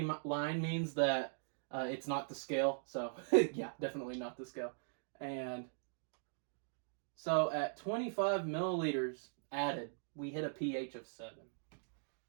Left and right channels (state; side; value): silent; left; digital silence